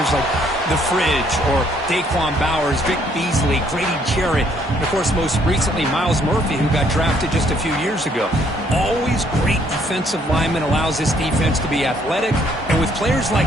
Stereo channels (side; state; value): both; normal; correlation 0.66